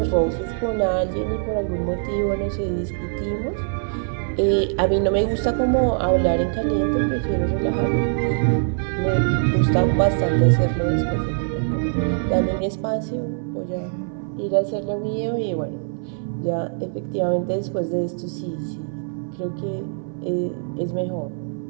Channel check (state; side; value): silent; left; 63 dB below the other